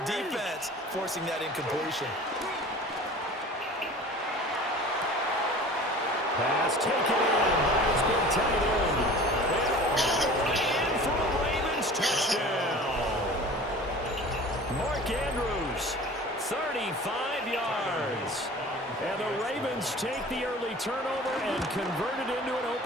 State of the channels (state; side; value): normal; both; correlation 0.42